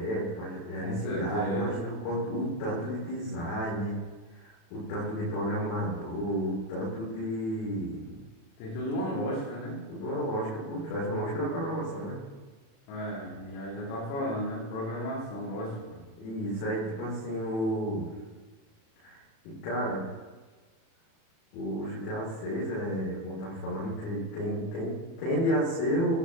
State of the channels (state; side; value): late; right; 36 ms